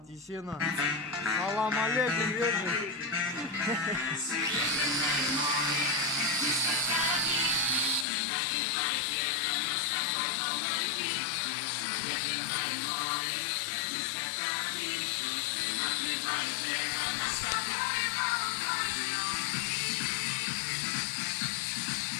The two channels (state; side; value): drops out; right; at 8.1 s